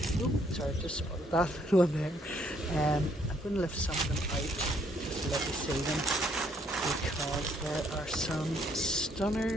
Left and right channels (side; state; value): both; normal; correlation 0.69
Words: Oh, sorry, just spotted that one there. I'm going to lift some of them out just to let you see them because there are some